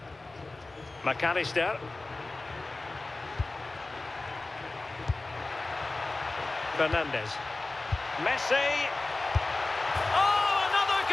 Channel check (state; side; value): quieter; right; 3.2 dB